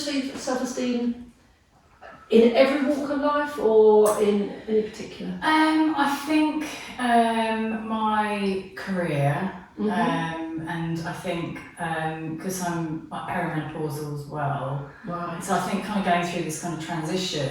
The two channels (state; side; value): identical; both; correlation 1.00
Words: in every walk of life or in any particular? I think my career, and I think because I'm perimenopausal as well, Right. so I think kind of going through this kind of transition,